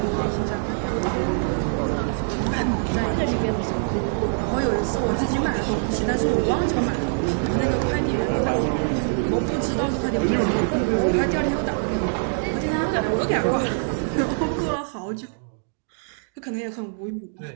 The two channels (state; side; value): silent; left; digital silence